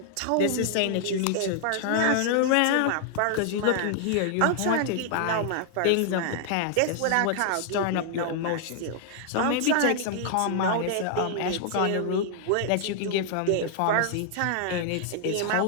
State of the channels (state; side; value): different; both; correlation 0.00